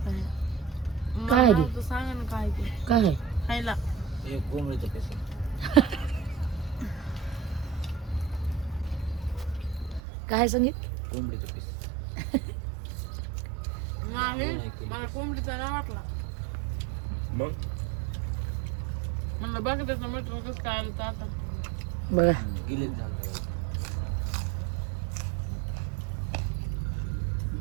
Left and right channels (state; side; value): drops out; left; at 10.0 s